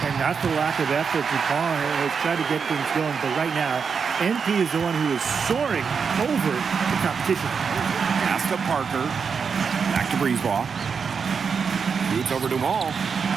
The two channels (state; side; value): quieter; left; 5.9 dB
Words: And not the lack of effort. Dupont has tried to get things going, but right now, MP is the one who is soaring over the competition. Pass to Parker. Back to Brisebois. Shoots over Dumont.